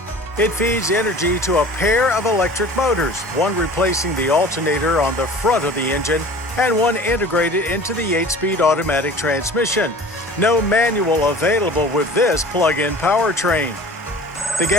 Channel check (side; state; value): both; normal; correlation 0.43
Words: It feeds energy to a pair of electric motors, one replacing the alternator on the front of the engine and one integrated into the 8-speed automatic transmission. No manual available with this plug-in powertrain. The